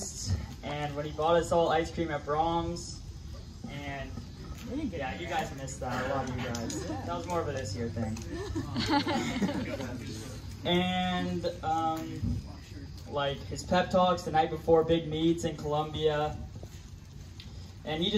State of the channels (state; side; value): identical; both; correlation 1.00